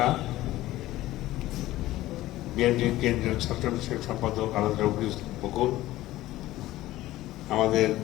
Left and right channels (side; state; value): right; quieter; 16.1 dB